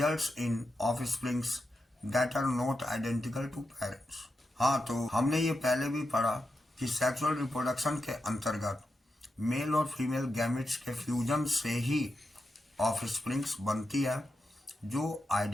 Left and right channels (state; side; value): normal; both; correlation 0.88